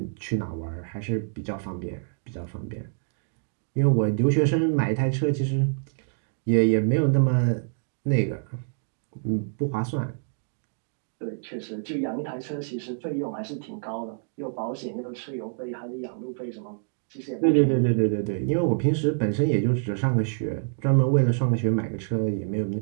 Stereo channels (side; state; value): left; silent; digital silence